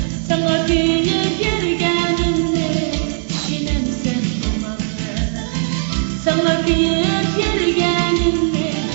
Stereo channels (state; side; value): silent; left; 67 dB below the other